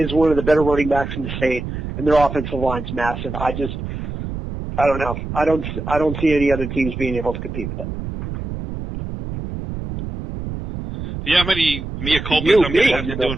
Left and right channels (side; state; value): right; noise; rumble, 7 dB below the sound